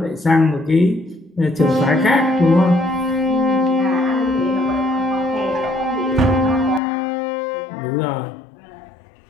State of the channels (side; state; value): right; drops out; at 6.8 s